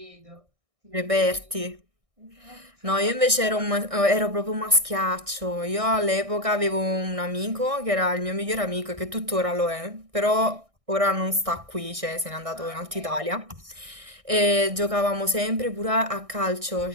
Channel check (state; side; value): late; left; 1.6 ms